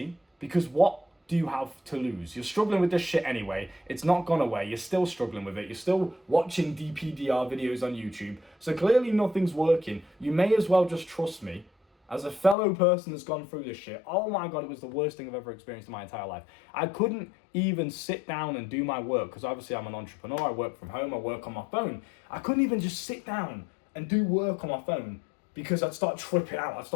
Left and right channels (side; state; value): right; drops out; at 12.6 s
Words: because what do you have to lose? You're struggling with this shit anyway. It's not gone away. You're still struggling with it. You're still watching DPDR videos on YouTube. So clearly nothing's working. You may as well just trust me. As a fellow person that's gone through this shit, oh my God, it was the worst thing I've ever experienced in my entire life. I couldn't even sit down and do my work because obviously I'm an entrepreneur. I work from home. I work on my phone. I couldn't even just sit down and do work on my phone because I'd start tripping out. I'd